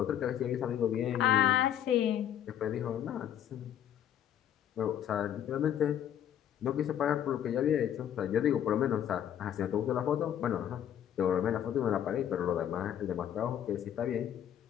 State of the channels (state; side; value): quieter; right; 10.2 dB